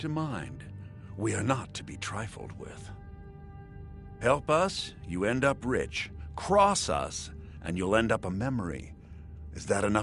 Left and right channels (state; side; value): identical; both; correlation 1.00